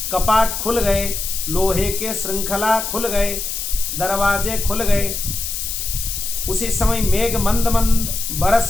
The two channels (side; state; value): left; noise; hiss, 4 dB below the sound